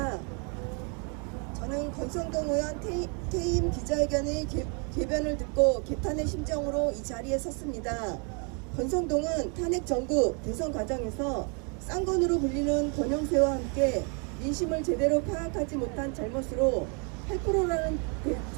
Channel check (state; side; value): quieter; left; 36.5 dB